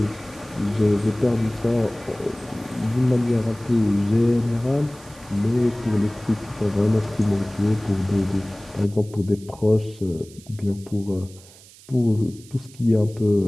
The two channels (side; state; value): right; noise; hiss, 23 dB below the sound